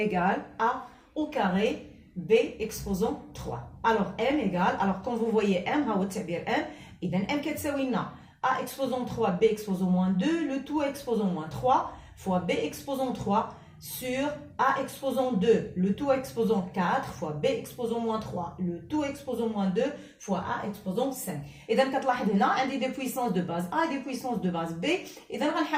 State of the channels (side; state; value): both; identical; correlation 1.00